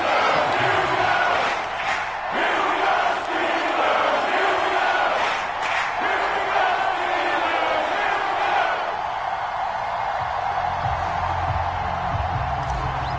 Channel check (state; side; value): identical; both; correlation 1.00